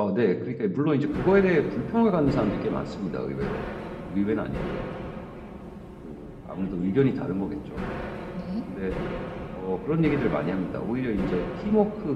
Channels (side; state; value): both; identical; correlation 1.00